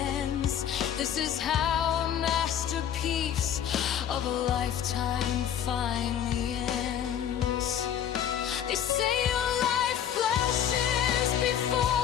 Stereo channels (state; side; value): quieter; right; 9.7 dB